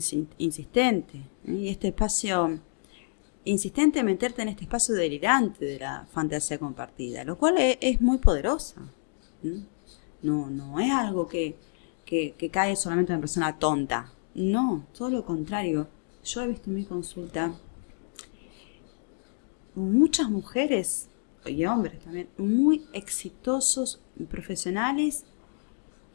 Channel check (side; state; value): right; silent; digital silence